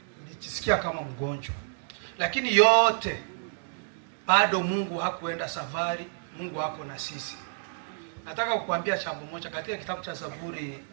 kama mgonjwa, lakini yote bado Mungu hakuenda safari. Mungu hako na sisi. Nataka kukuambia jambo moja katika kitabu cha Zaburi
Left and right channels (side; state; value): left; silent; digital silence